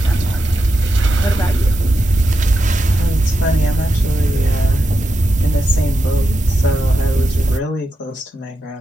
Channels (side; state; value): both; normal; correlation 0.87